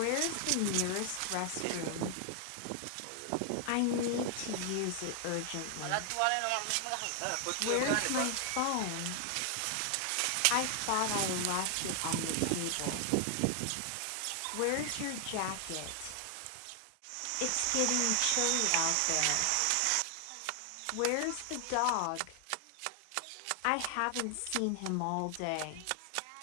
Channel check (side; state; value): both; different; correlation 0.00